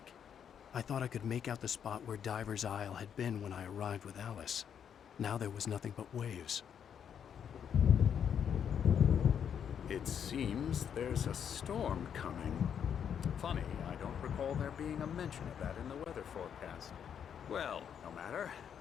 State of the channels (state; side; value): quieter; right; 8.2 dB